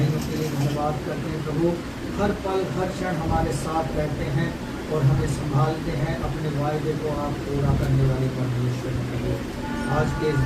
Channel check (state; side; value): identical; both; correlation 1.00